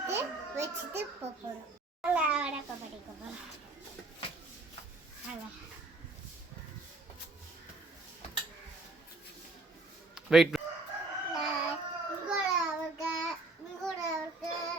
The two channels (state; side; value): quieter; left; 3.1 dB